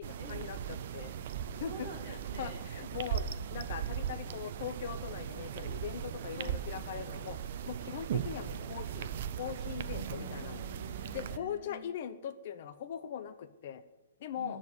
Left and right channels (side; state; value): both; inverted; correlation -0.42